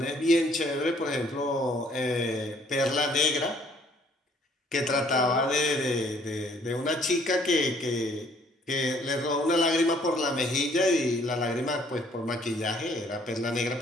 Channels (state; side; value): normal; both; correlation 0.61